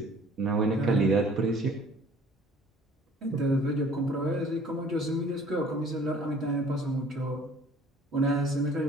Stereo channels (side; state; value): both; normal; correlation 0.52